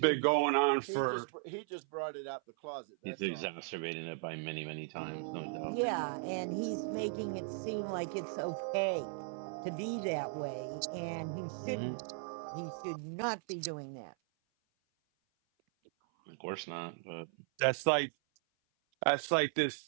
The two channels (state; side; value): silent; left; 53 dB below the other